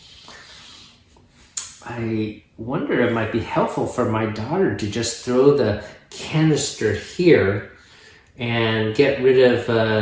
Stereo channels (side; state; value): both; identical; correlation 1.00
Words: I wonder it might be helpful for my daughter to just throw the canister here and get rid